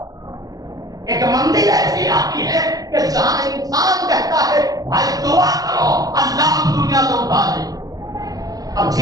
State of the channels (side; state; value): left; late; 0.18 ms